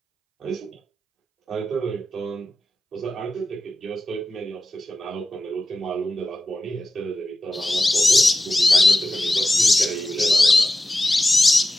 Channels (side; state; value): both; normal; correlation 0.94